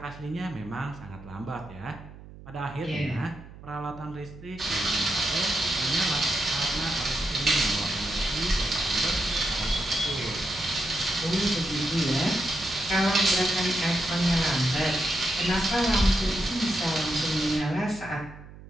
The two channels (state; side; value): noise; right; hum, 17 dB below the sound